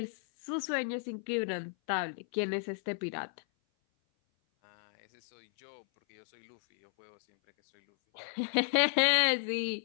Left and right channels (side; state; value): right; silent; 56 dB below the other